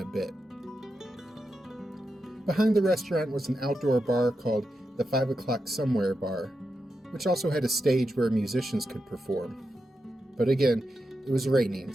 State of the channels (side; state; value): both; normal; correlation 0.88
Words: a bit. Behind the restaurant was an outdoor bar called the 5 O'Clock Somewhere Bar, which also had a stage where musicians could perform. But again, it was raining,